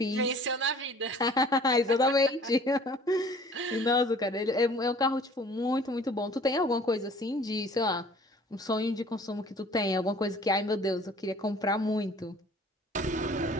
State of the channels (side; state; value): both; normal; correlation 0.50